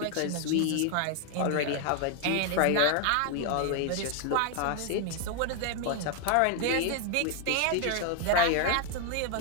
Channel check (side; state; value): both; different; correlation 0.00